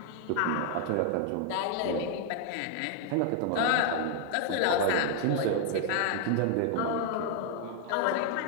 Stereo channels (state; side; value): different; both; correlation 0.00